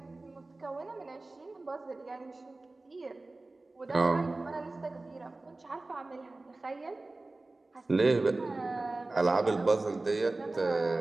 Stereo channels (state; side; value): quieter; left; 3.1 dB